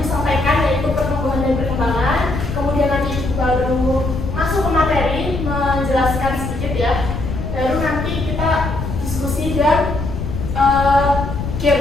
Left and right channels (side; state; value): left; noise; rumble, 5 dB below the sound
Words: sampaikan, yaitu pertumbuhan dan perkembangan. Kemudian nanti Ibu baru masuk ke materi, menjelaskan sedikit ya. Baru nanti kita diskusi dan